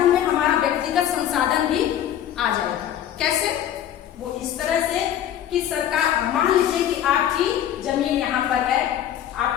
में हमारा व्यक्तिगत संसाधन भी आ जाएगा। कैसे? वो इस तरह से कि सरकार, मान लीजिए कि आपकी जमीन यहाँ पर है,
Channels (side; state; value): right; quieter; 10.8 dB